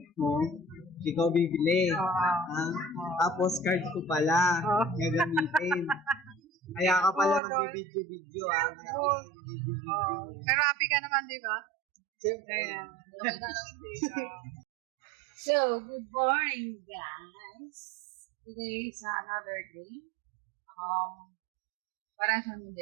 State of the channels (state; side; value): drops out; left; at 7.4 s